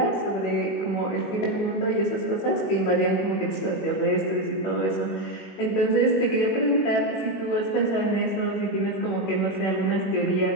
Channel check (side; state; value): right; late; 21 ms